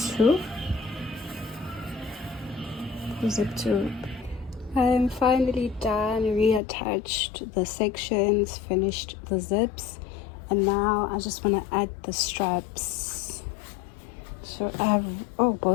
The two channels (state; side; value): drops out; right; at 6.6 s